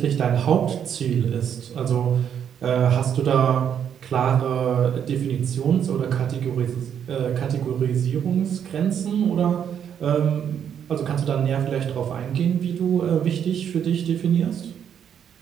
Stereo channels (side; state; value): left; quieter; 8.6 dB